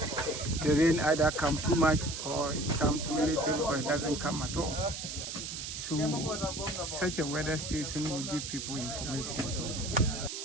the rain either comes too much or it comes too little or it doesn't come at all. So such a weather station will give people information.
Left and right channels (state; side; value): noise; right; hiss, 6 dB below the sound